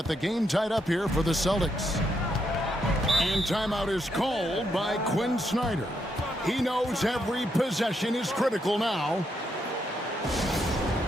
the game tied up here for the Celtics. And timeout is called by Quinn Snyder. He knows every possession is critical now.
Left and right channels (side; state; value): both; normal; correlation 0.78